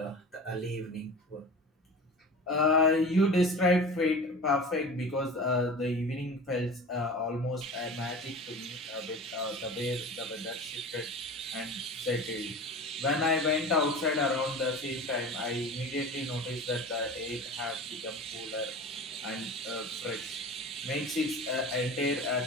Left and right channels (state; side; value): normal; both; correlation 0.35